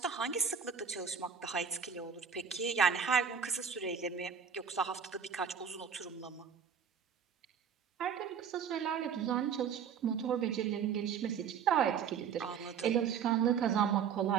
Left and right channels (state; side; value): quieter; left; 7.1 dB